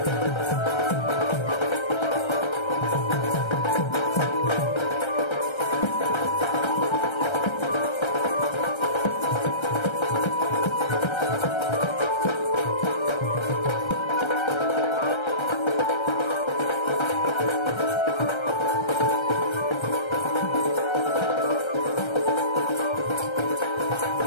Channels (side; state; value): right; late; 1.3 ms